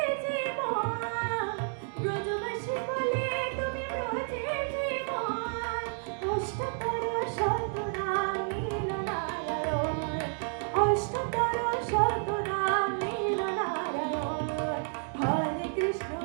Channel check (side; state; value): left; silent; 57 dB below the other